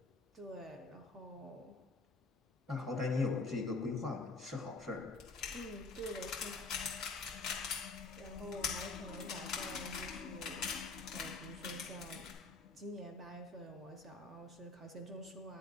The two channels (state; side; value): quieter; right; 3.7 dB